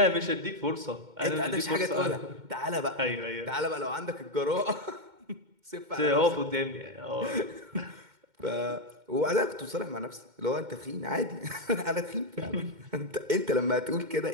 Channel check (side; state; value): left; late; 2.1 ms